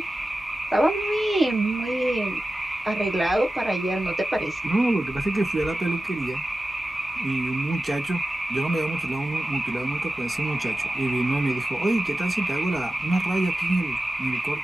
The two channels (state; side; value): normal; both; correlation 0.94